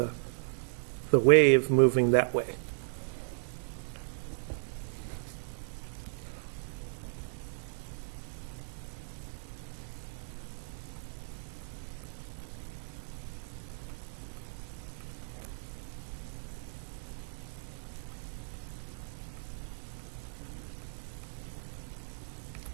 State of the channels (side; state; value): left; silent; digital silence